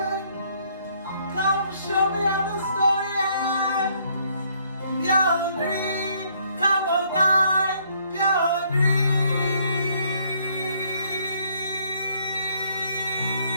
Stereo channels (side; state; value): both; inverted; correlation -0.67